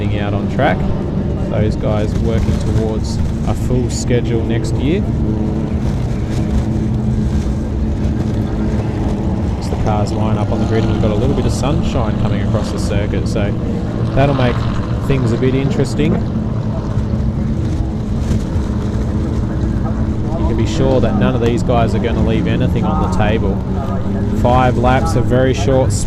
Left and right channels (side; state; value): both; identical; correlation 1.00